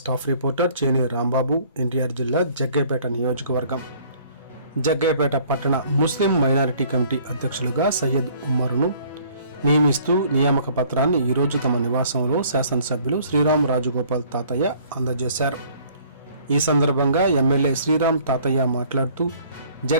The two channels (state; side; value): inverted; both; correlation -0.56